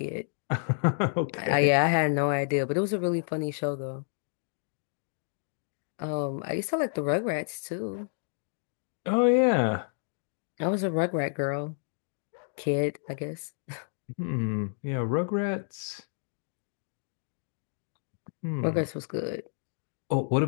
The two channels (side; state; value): right; silent; digital silence